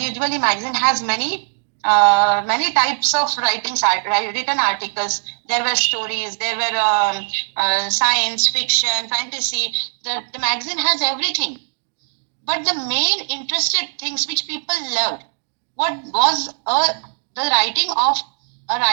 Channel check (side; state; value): left; silent; digital silence